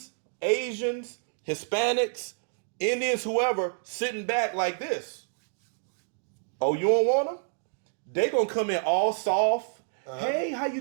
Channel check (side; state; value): left; silent; digital silence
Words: Asians, Hispanics, Indians, whoever, sitting back like this. Oh, you don't want them? They gonna come in all soft. Hey, how you